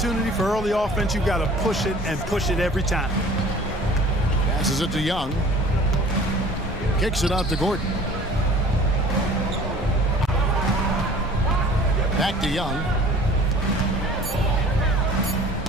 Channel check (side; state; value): both; normal; correlation 0.47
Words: for early offense, you've got to push it and push it every time. Passes it to Young. Kicks it out to Gordon. Back to Young.